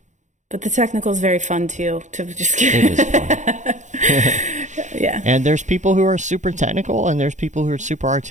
But the technical is very fun too, to just It is fun. Yeah. And there's people who are super technical and there's people who are super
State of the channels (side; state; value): left; late; 0.35 ms